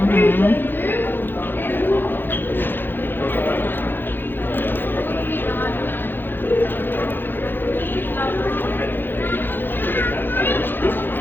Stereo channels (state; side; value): late; right; 0.098 ms